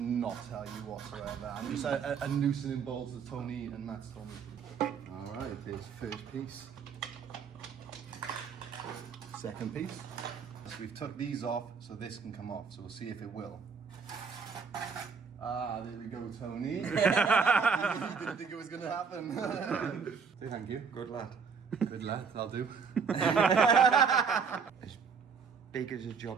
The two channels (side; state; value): left; quieter; 5.9 dB